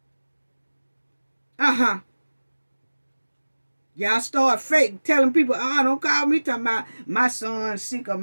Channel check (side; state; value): both; inverted; correlation -1.00